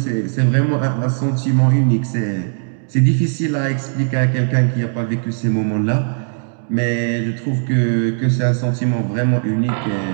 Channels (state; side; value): silent; left; digital silence